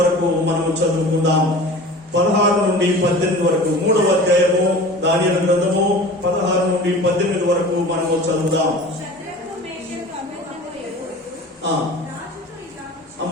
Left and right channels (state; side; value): normal; both; correlation 0.39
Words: మనము చదువుకుందాం. 16 నుండి 18 వరకు 3వ అధ్యాయము దానియేలు గ్రంథము 16 నుండి 18 వరకు మనము చదువుదాం.